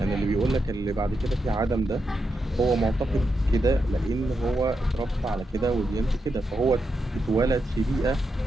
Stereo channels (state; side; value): normal; both; correlation 0.85